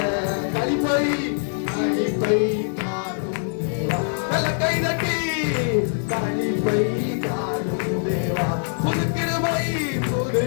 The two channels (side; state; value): right; silent; 63 dB below the other